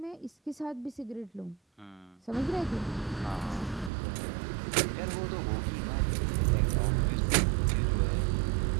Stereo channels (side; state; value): left; drops out; at 3.9 s